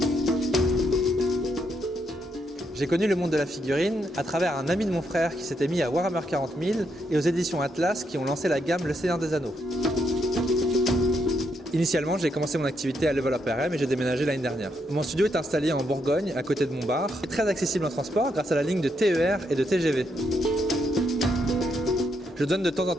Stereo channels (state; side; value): normal; both; correlation 0.78